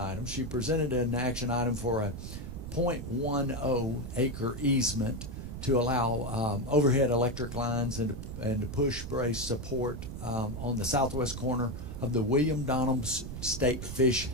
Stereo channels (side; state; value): right; noise; rumble, 8 dB below the sound